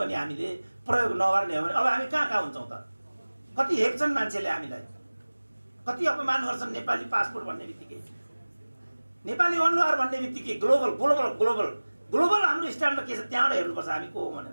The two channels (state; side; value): inverted; both; correlation -1.00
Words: हामीले प्रयोग नगर्ने हो भने अब हामी कहाँ हुन्छौँ त? कति हेप्छन् मान्छेले हामीलाई, कति अपमान गर्छन्। नेपाली पासपोर्ट भन्ने बित्तिकै, नेपाली अनुहार भन्ने बित्तिकै ग्लोबल ग्लोबल ग्लोबल ग्लोबल हाम्रो स्ट्यान्डर्ड के छ त्यहाँबाट हेर्नुपर्छ हामी को हो